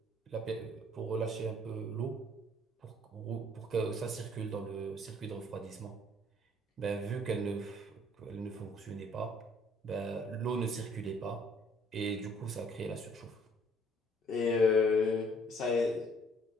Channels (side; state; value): both; normal; correlation 0.61